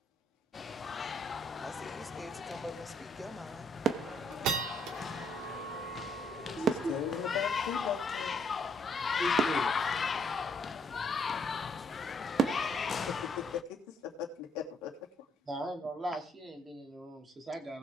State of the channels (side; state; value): both; normal; correlation 0.69